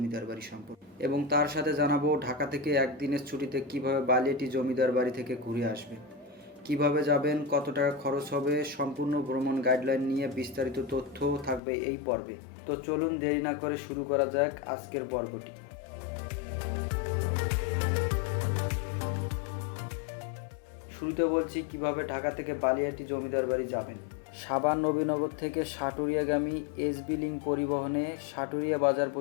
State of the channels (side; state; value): right; drops out; at 11.6 s